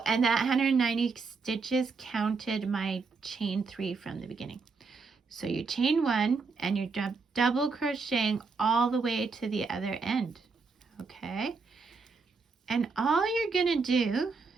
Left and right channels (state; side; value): quieter; left; 4.6 dB